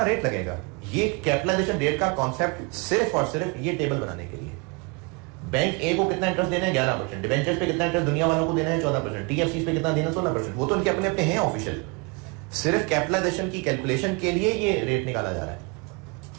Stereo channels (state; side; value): quieter; left; 29.4 dB